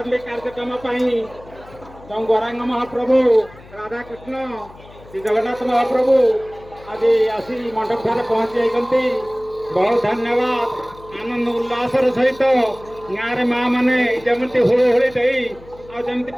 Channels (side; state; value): left; noise; hum, 21 dB below the sound